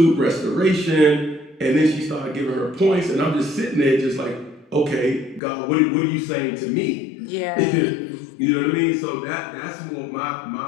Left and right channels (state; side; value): drops out; right; at 5.4 s